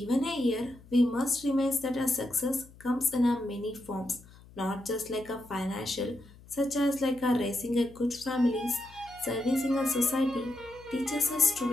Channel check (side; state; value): left; noise; hum, 23 dB below the sound